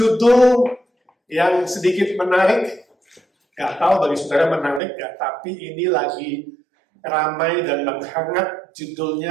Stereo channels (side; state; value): left; drops out; at 4.8 s